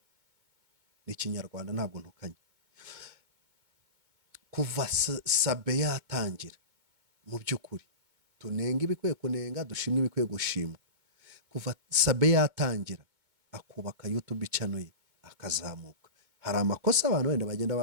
Ni Ikinyarwanda, ntabwo ntukanye. Kuva Sabe yatangira, mu by'ukuri tunenga ibikwiye kunenga, dushimwe ibikwiye gushimwa. Kuva Sabe yatangira akubaka YouTube channel ye akazamuka, hari amakosa abantu wenda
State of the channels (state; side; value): late; left; 2.2 ms